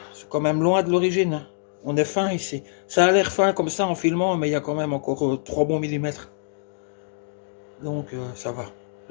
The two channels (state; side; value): silent; right; digital silence